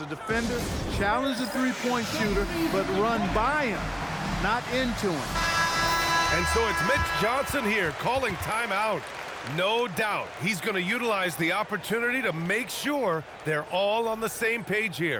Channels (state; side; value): identical; both; correlation 1.00